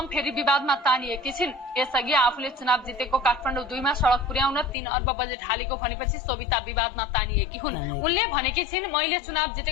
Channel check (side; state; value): right; drops out; at 4.8 s